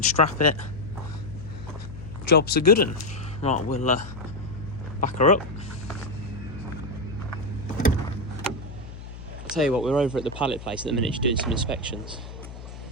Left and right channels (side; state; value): left; noise; hum, 13 dB below the sound